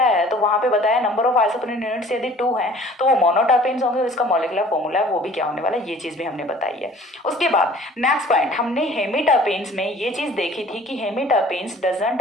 है, तो वहां पे बताया नंबर ऑफ आइसोप्रीन यूनिट्स यदि 2 हैं तो वो मोनोटर्पिन्स होंगे. इसका मॉलिक्यूलर फॉर्मूला है वो भी क्या होने वाला है, ये चीज भी हमने बताई है. उसके बाद नेक्स्ट पॉइंट, हमने हेमीटर्पेन्स में ये चीज देखी थी कि hemiterpenes doesn't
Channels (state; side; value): normal; both; correlation 0.50